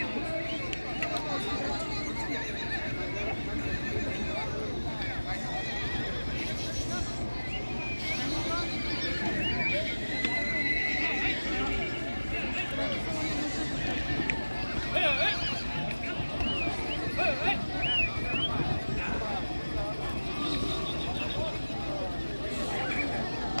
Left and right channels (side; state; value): both; inverted; correlation -1.00